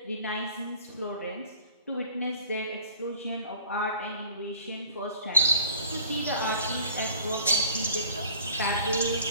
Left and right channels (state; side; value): inverted; both; correlation -0.50